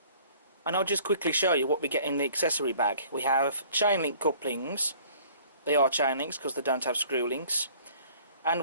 And I'll just quickly show you what we get in the accessory bag. We have chain link couplings. They are chain links because they don't have screw links. And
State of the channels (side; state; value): both; inverted; correlation -0.52